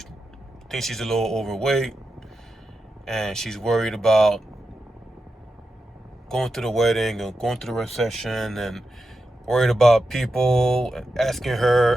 thinks she's a little overweight, and she's worried about going to the wedding and going to the reception, and worried about people asking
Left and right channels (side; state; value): both; normal; correlation 0.89